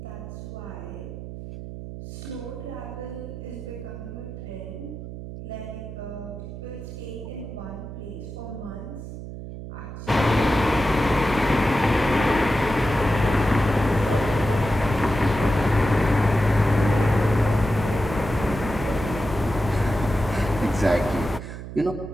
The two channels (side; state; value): right; noise; hum, 10 dB below the sound